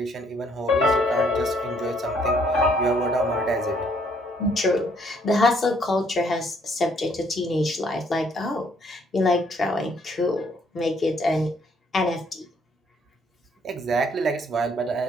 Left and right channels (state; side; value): normal; both; correlation 0.67